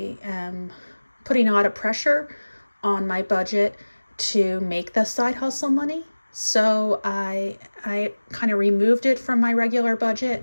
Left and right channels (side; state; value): both; inverted; correlation -1.00